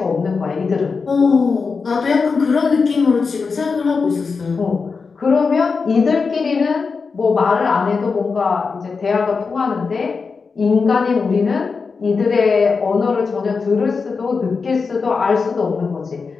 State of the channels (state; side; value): quieter; right; 4.9 dB